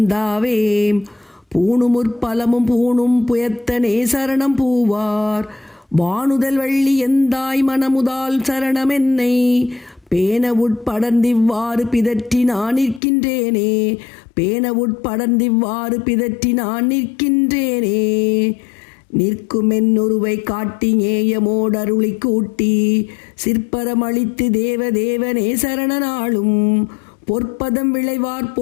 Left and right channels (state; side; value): drops out; right; at 13.0 s